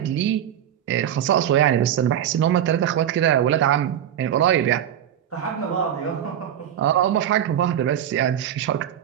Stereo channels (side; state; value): left; quieter; 10.2 dB